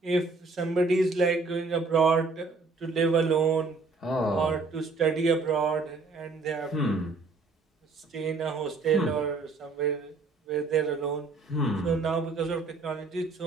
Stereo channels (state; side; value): quieter; left; 3.9 dB